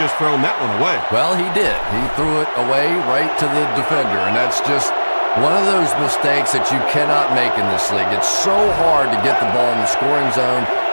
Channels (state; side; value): inverted; both; correlation -1.00